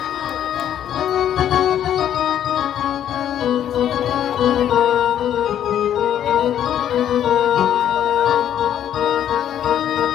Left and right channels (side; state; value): right; quieter; 10.4 dB